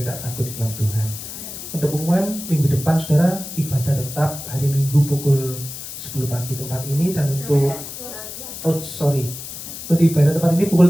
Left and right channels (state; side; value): noise; left; hiss, 10 dB below the sound